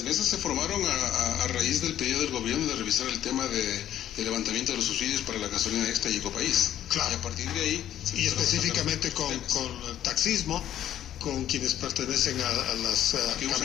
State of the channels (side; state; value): right; quieter; 11.4 dB